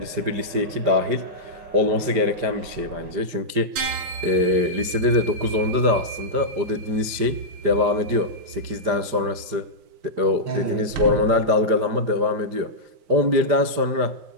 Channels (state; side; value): late; left; 5.1 ms